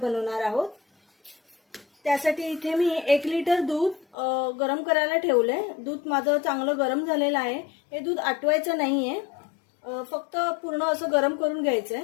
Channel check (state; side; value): drops out; right; at 4.2 s